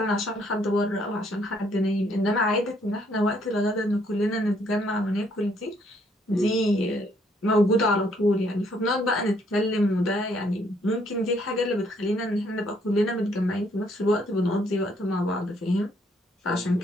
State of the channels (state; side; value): normal; both; correlation 0.68